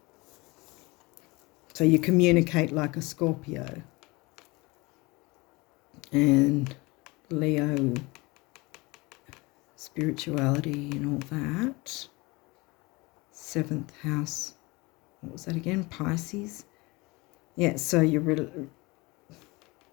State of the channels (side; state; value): right; quieter; 24.2 dB